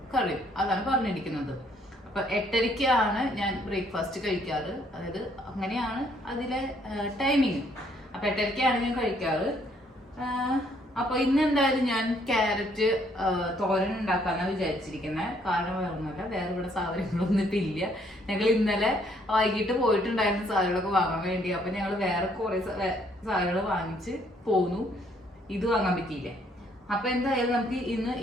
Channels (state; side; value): normal; both; correlation 0.67